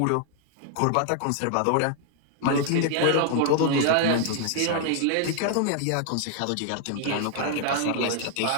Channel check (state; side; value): different; both; correlation 0.00